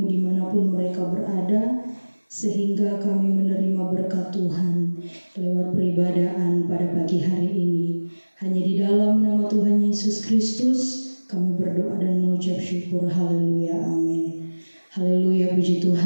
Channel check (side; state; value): both; inverted; correlation -1.00